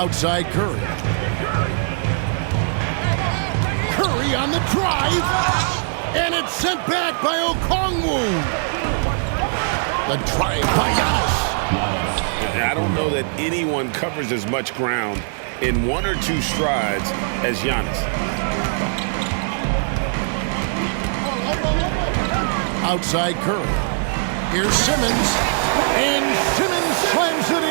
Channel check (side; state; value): left; silent; digital silence